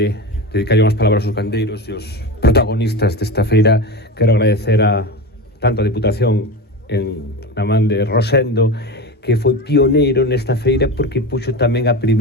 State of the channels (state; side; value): normal; both; correlation 0.25